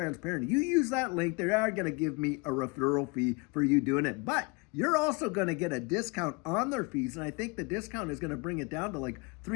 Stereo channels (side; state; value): right; quieter; 28.5 dB